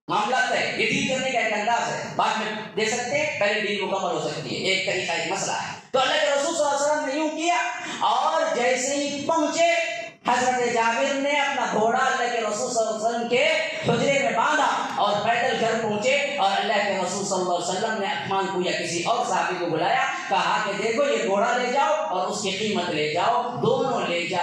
معاملہ طے۔ یہ ڈیل کرنے کا ایک انداز ہے، بعد میں دے سکتے ہیں، پہلے ڈیل مکمل ہو سکتی ہے، ایک طریقہ ایک مسئلہ ہے۔ تو اللہ کے رسول صلی اللہ علیہ وسلم نے یوں کیا، اور جیسے ہی پہنچے حضرت جابر نے اپنا گھوڑا اللہ کے رسول صلی اللہ علیہ وسلم کے حجرے میں باندھا اور پیدل گھر پہنچے، اور اللہ کے رسول صلی اللہ علیہ وسلم نے عثمان کو یا کسی اور صحابی کو بلایا، کہا کہ دیکھو یہ گھوڑا لے جاؤ اور اس کی قیمت لے جاؤ، دونوں لے جا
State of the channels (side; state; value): both; identical; correlation 1.00